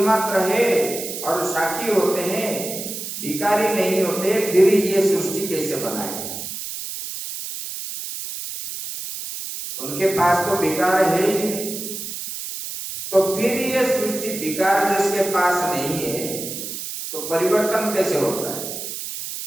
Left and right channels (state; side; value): noise; right; hiss, 7 dB below the sound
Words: मात्र है और साक्षी होते हैं, विकारी नहीं होते, फिर ये सृष्टि कैसे बनाए? उनके पास तो विकार है ही नहीं, तो फिर ये सृष्टि विकार जिसके पास नहीं है तो परिवर्तन कैसे होता है?